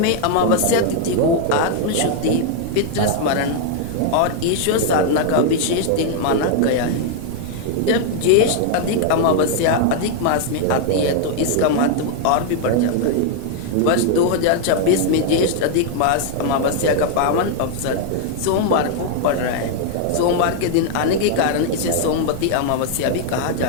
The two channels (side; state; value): both; different; correlation 0.00